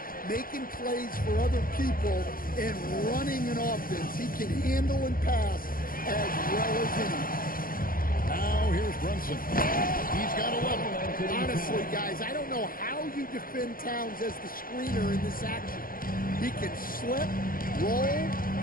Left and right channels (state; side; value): late; right; 0.41 ms